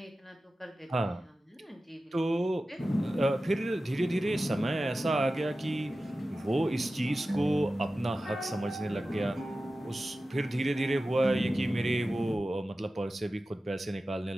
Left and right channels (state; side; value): normal; both; correlation 0.94